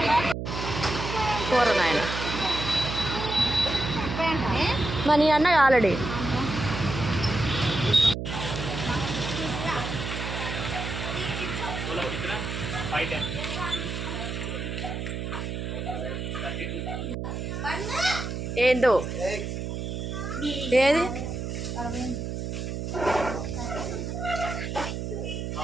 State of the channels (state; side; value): noise; right; hum, 4 dB below the sound